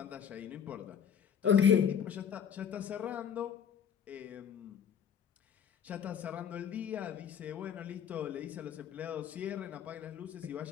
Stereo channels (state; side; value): quieter; right; 8.1 dB